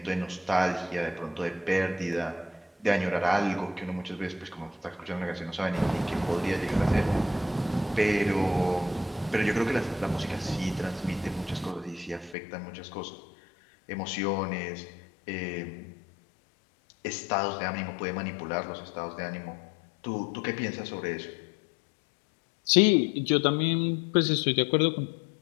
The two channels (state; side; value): drops out; right; at 12.4 s